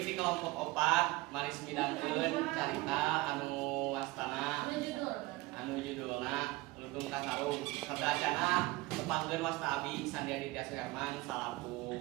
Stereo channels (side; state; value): left; quieter; 21.3 dB